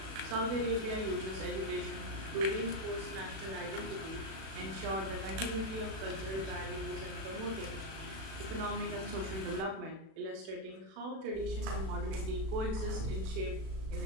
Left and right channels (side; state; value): left; late; 36 ms